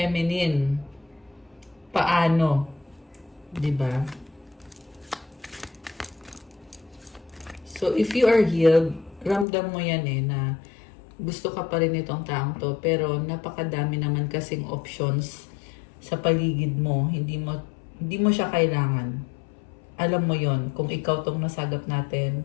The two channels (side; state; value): right; drops out; at 9.5 s